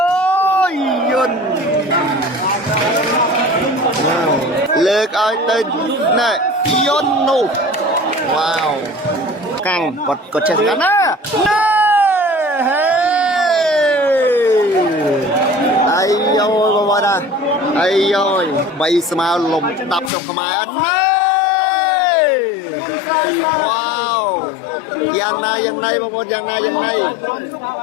yun lừa coi tôi này yun nu wow căng còn chân ngắn á ai ơi bà nè ai ơi bay smile lùm đập trong cái máy anh wow yang này bà con yang này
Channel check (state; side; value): drops out; right; at 20.1 s